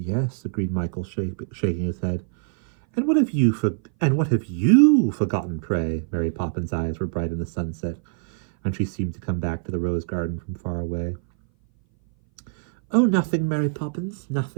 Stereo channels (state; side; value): silent; left; 59 dB below the other